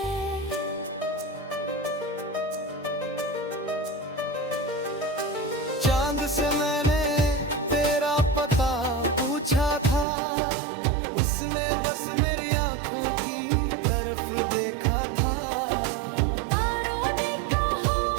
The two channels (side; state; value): left; drops out; at 10.1 s